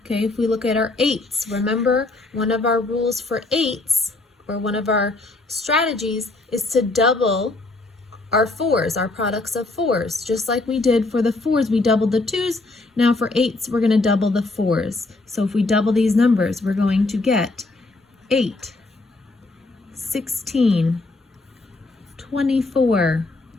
Okay, if we look at our 8s, remember one of our rules for 8s, or one of our strategies, is to double our 4s, our products of 4s. Just like we did for the 4s, we doubled the 2s. Now for 8s, we're going to double the 4s. So if we double these numbers, we're going to get 8, 16, 24,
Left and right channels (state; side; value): quieter; right; 3.1 dB